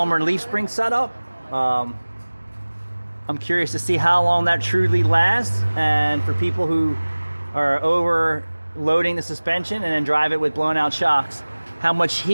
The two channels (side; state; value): both; inverted; correlation -1.00